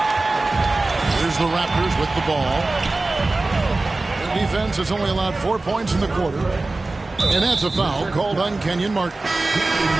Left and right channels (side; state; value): left; quieter; 3.2 dB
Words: Here's the Raptors with the ball. The defense has only allowed 4 points in the quarter. And that's a foul called on Kenyon Martin.